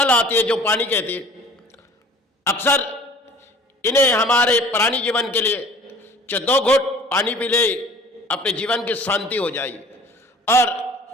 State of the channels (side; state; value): both; normal; correlation 0.48